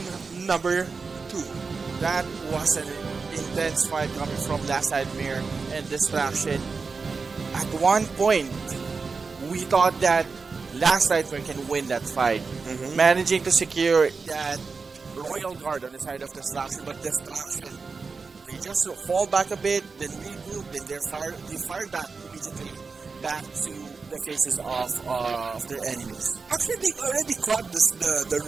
number 2. That was an intense fight coming from Last Nightmare and Distraction. At one point, we thought that Last Nightmare can win that fight, managing to secure that Royal Guard on the side of Distraction, but Distraction, they just fall back a bit, then regroup, then they fired back immediately back to the faces of their enemies. Actually, they already caught the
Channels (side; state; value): left; quieter; 4.6 dB